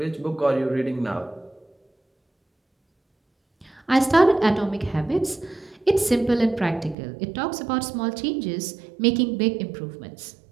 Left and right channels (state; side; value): drops out; left; at 7.0 s